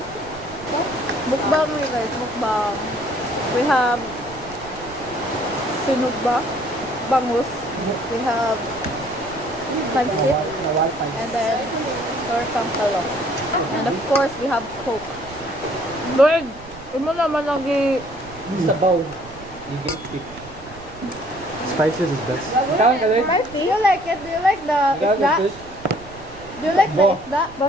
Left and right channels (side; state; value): right; noise; rumble, 19 dB below the sound